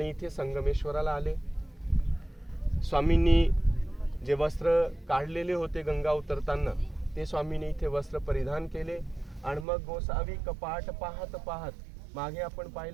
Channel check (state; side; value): drops out; left; at 9.7 s